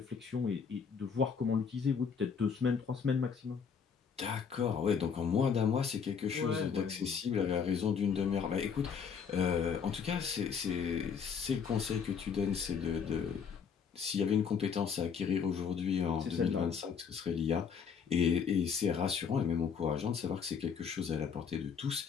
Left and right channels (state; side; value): quieter; right; 6.5 dB